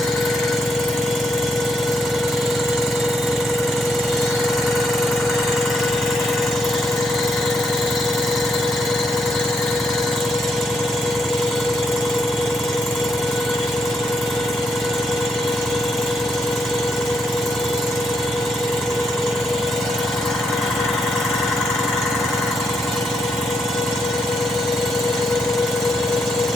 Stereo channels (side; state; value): both; normal; correlation 0.78